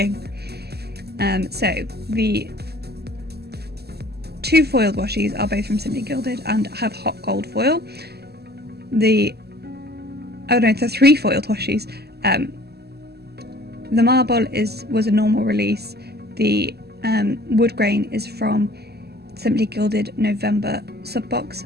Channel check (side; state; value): left; late; 0.47 ms